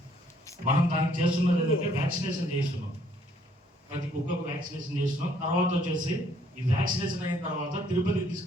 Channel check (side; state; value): both; normal; correlation 0.64